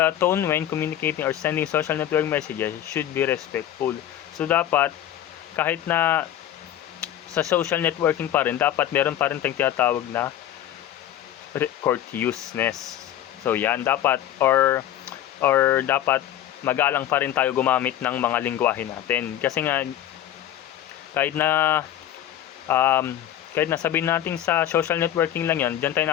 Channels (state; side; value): quieter; right; 11.7 dB